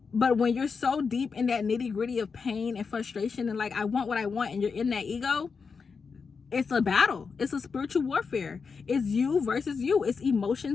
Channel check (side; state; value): right; quieter; 5.3 dB